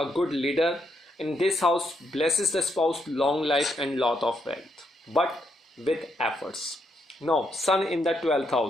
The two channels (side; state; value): both; normal; correlation 0.77